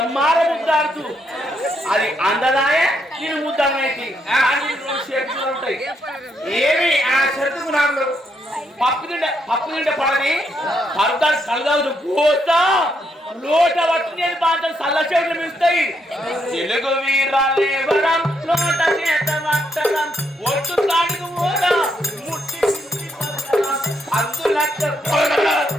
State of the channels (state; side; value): normal; both; correlation 0.77